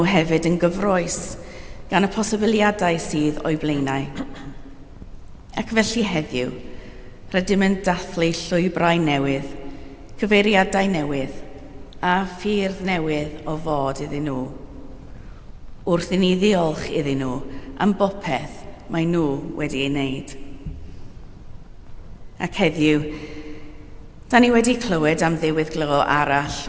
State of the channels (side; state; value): both; identical; correlation 1.00